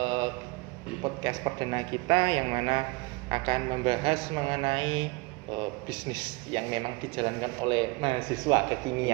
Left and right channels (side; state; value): left; quieter; 25.7 dB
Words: Podcast perdana kita yang mana akan membahas mengenai bisnis yang memang dijalankan oleh mahasiswa